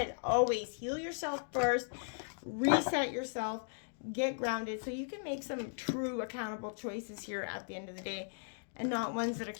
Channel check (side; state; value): right; silent; digital silence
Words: Always heal yourself first. Reset yourself. Get grounded so you can make some true accountable choices here at the end of the day. And not ones that are